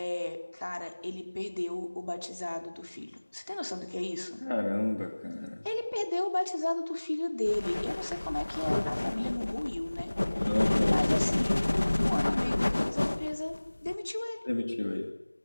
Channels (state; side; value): inverted; both; correlation -1.00